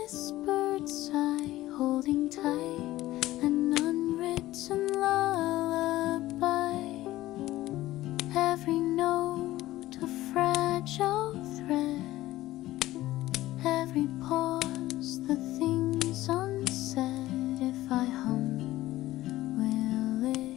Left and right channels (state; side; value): quieter; right; 16.1 dB